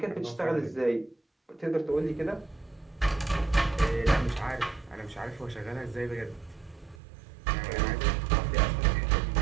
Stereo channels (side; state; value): left; drops out; at 7.0 s